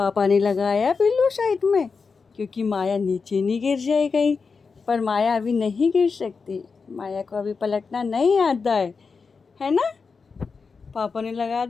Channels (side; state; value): right; quieter; 5.0 dB